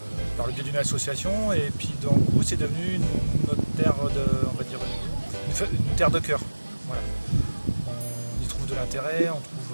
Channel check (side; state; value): both; inverted; correlation -1.00